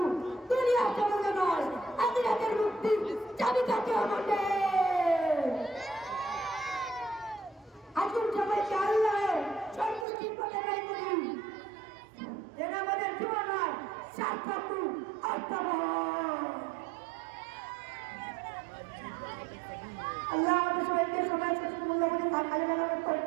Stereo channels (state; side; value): drops out; left; at 10.1 s